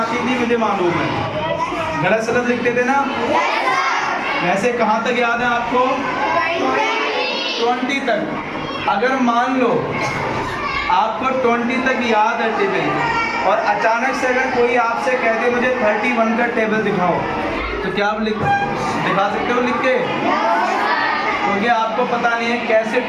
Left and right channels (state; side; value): identical; both; correlation 1.00